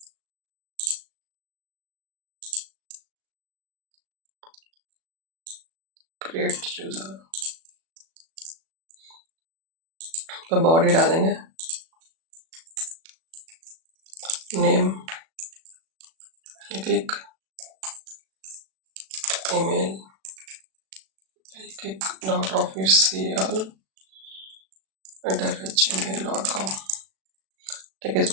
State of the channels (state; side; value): late; left; 37 ms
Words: क्रिएट यूजर, तो बॉडी डालेंगे, नेम, क्लिक, ईमेल, click.official@gmail.com। ठीक है,